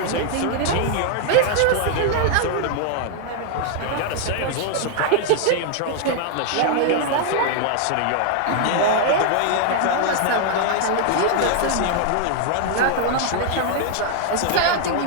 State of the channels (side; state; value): both; different; correlation 0.00